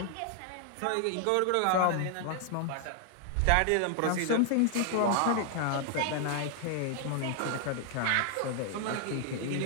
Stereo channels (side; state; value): both; different; correlation 0.00